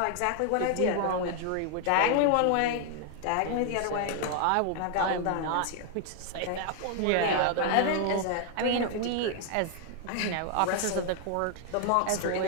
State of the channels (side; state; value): both; different; correlation 0.00